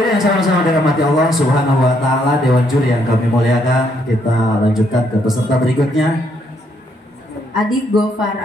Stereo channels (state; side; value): normal; both; correlation 0.72